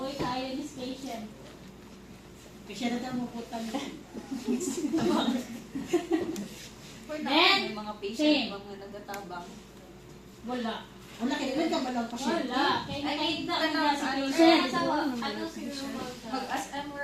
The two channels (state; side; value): identical; both; correlation 1.00